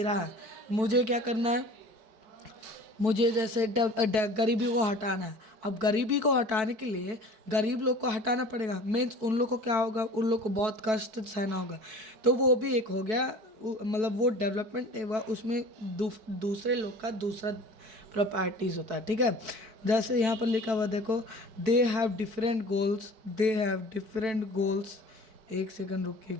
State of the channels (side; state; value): left; late; 4.6 ms